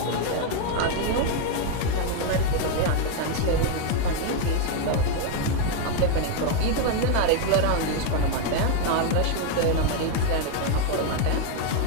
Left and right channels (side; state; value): both; different; correlation 0.01